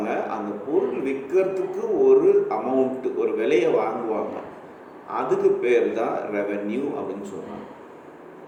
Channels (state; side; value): identical; both; correlation 1.00